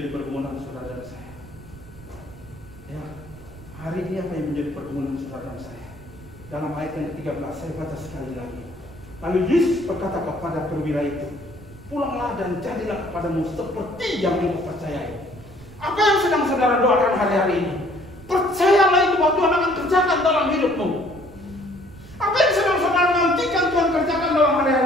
pergumulan saudara dan saya? Ya, hari ini apa yang menjadi pergumulan saudara dan saya? Dalam ayat yang ke-13 saya baca sekali lagi. Lalu Yesus berkata kepada perwira itu, pulanglah dan jadilah kepadamu seperti yang engkau percayai. Apa yang sedang saudara doakan hari-hari ini? Percayalah itu bahwa Tuhan akan kerjakan dalam hidupmu. Apa yang sedang saudara nantikan Tuhan kerjakan dalam hari-hari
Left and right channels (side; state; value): right; noise; rumble, 19 dB below the sound